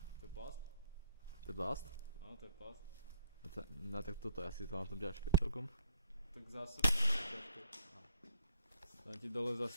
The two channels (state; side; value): inverted; both; correlation -0.64